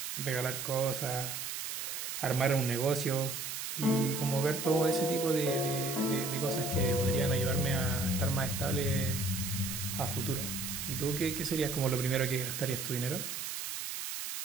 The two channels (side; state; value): right; noise; hiss, 5 dB below the sound